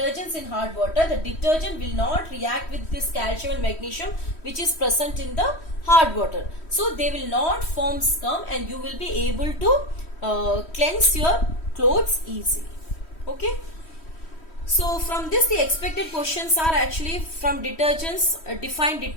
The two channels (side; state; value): right; late; 3.1 ms